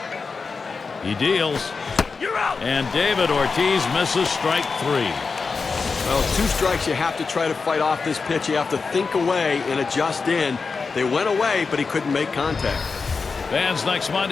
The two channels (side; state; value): right; quieter; 4.7 dB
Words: He deals. You're out. And David Ortiz misses strike 3. Well, 2 strikes, you have to try to fight off this pitch. You have to think away and adjust in. They went away, but he couldn't make contact. Fans, next